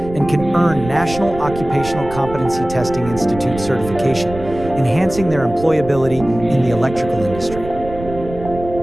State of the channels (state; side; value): noise; right; rumble, 12 dB below the sound